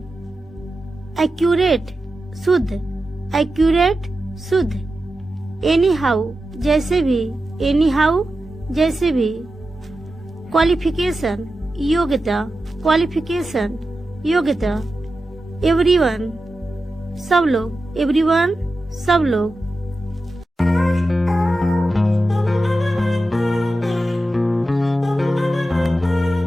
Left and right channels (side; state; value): both; normal; correlation 0.92